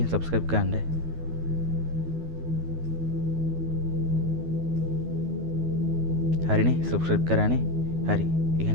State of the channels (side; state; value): left; late; 12 ms